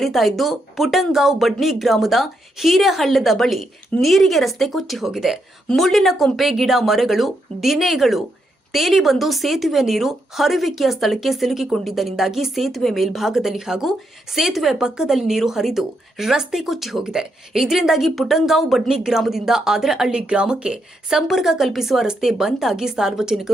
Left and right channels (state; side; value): normal; both; correlation 0.80